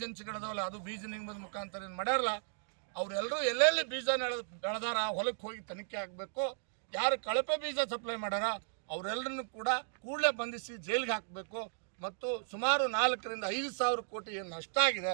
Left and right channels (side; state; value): left; silent; digital silence